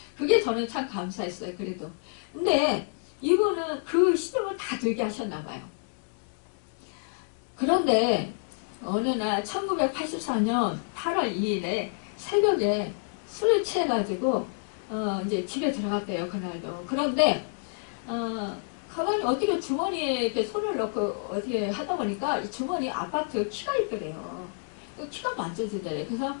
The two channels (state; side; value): silent; right; digital silence